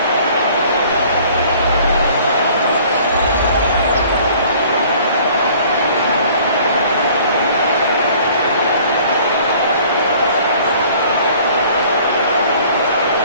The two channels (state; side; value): inverted; both; correlation -0.53